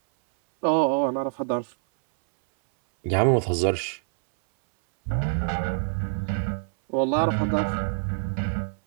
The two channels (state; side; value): silent; left; 60 dB below the other